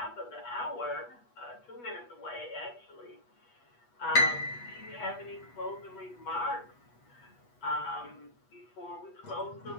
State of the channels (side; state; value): right; late; 8.2 ms